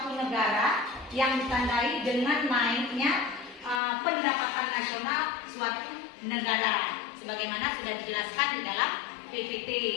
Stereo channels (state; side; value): drops out; right; at 3.8 s